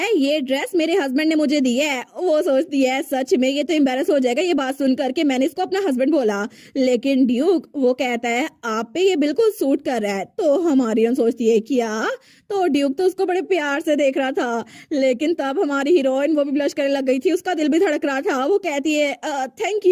ये ड्रेस मेरे हस्बैंड ने मुझे दी है। वो सोचती है सच में ये तो एम्बेरस हो जाएगा ये बात सुन करके मैंने इसको अपना हस्बैंड बोला। लेकिन ड्यूक वो कहता है आप पे ये बिल्कुल सूट कर रहा है। तो हमारी सोचती है क्या? तो ड्यूक तो उसको बड़े प्यार से देख रहा था, लेकिन तब हमारी हीरोइन वो भी ब्लश करने लग गई थी, उसका दिल भी धड़क रहा था। वो कहती है थैंक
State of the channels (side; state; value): both; identical; correlation 1.00